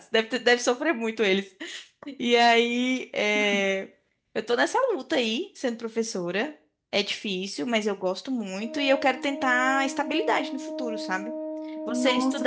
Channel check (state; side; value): identical; both; correlation 1.00